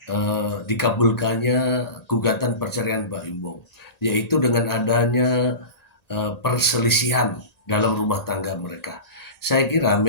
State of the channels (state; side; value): late; right; 1.9 ms